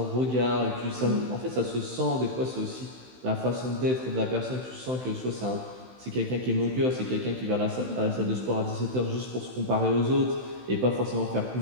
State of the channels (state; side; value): late; left; 16 ms